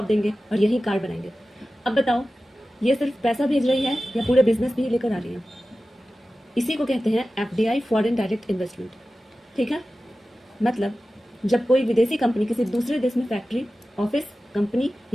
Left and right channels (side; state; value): both; normal; correlation 0.95